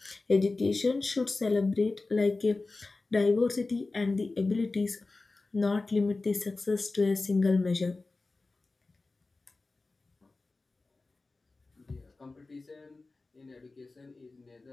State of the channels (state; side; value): quieter; right; 3.5 dB